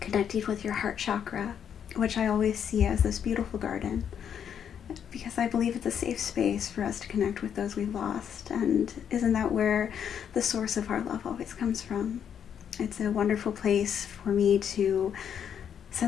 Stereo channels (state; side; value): quieter; right; 8.4 dB